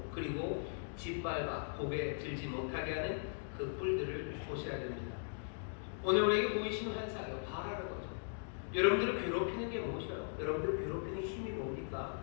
그리고 짓밟아 고개 들지 못하게 하는 그 뿔들을 보셔야 됩니다. 오늘 우리에게 보이시는 환상이요, 바라는 거죠. 여러분들을 괴롭히는 게 무엇이에요? 여러분들을 괴롭히는 힘이 뭡니까?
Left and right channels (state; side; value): silent; right; digital silence